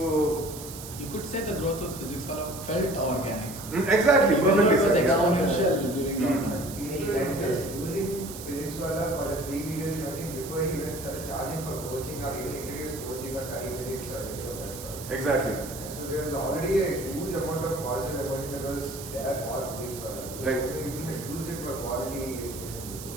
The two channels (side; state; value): right; noise; hiss, 12 dB below the sound